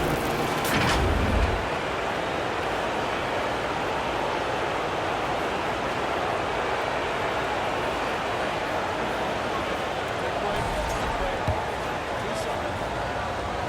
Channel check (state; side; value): identical; both; correlation 1.00